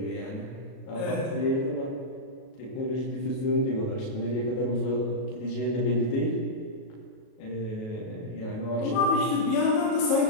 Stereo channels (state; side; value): late; right; 37 ms